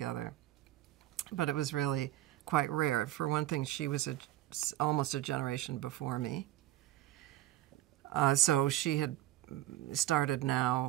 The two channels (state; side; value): quieter; left; 14.4 dB